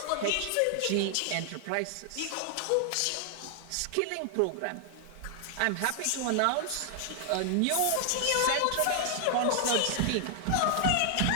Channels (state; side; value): different; both; correlation 0.00